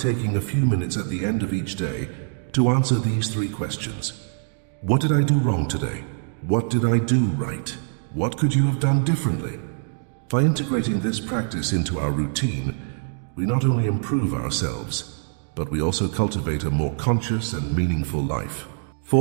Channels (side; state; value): left; silent; digital silence